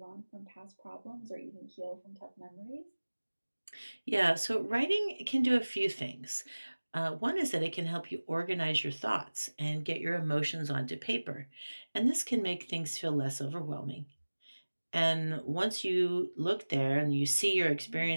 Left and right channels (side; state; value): both; inverted; correlation -1.00